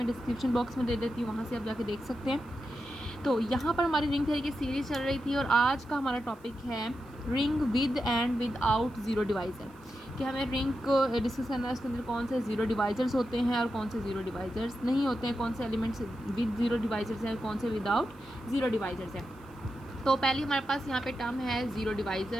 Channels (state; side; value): noise; left; hiss, 30 dB below the sound